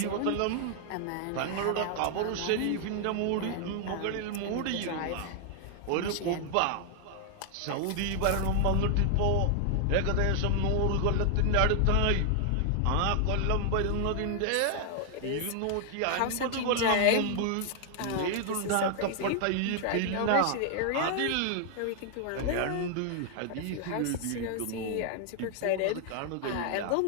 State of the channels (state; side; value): different; both; correlation 0.00